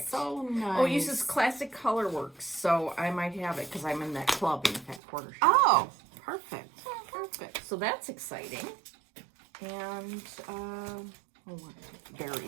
so nice. Oh, it uses Classic Colorworks, so I might have it because I'm in that club in that quarter shop. Oh, perfect. Perfect. So that's exciting. And,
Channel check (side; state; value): left; drops out; at 5.0 s